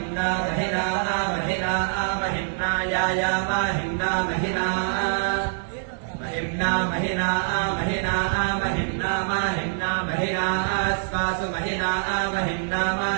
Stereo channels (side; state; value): left; silent; digital silence